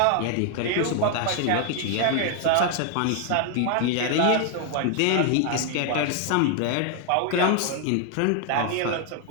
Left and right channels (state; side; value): different; both; correlation 0.00